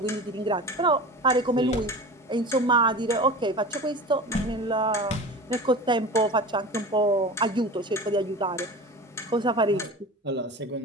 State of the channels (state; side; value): normal; both; correlation 0.34